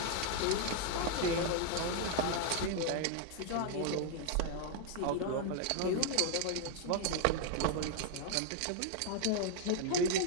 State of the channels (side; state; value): both; different; correlation 0.00